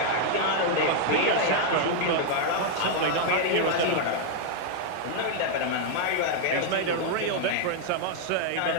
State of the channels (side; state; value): both; different; correlation 0.00